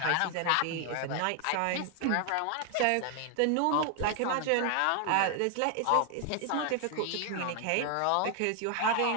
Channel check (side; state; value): both; different; correlation 0.00